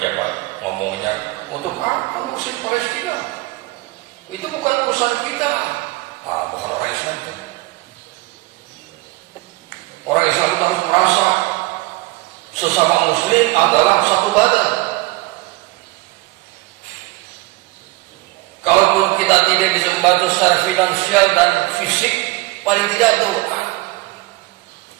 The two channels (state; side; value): quieter; left; 21.4 dB